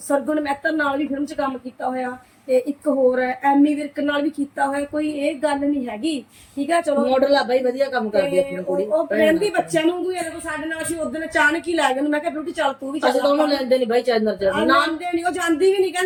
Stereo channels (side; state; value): both; identical; correlation 1.00